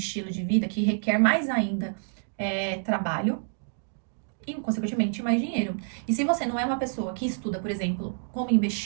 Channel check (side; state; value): left; silent; digital silence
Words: de vida que requer mais ainda trabalho e, consequentemente, mais dinheiro. E se você não é uma pessoa que estuda, por exemplo, como